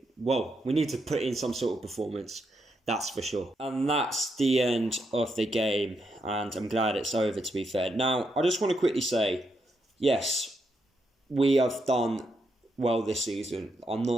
Well, we need to put in some sort of performance. That's for sure. And that's the end of the game. And I'm glad it's over, to be fair. Now, I just want to quickly say, yes, we have done well this season. I'm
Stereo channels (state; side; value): normal; both; correlation 0.80